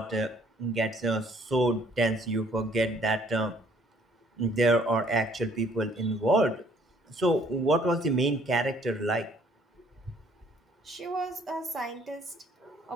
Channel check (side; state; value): both; normal; correlation 0.61